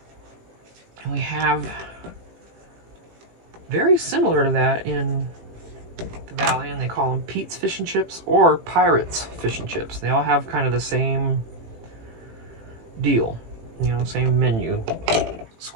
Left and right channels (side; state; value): left; late; 18 ms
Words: And we have very similar to that in the valley, and they call them Pete's Fish and Chips or Pirates Fish and Chips. They all have kind of the same deal, you know, same menu.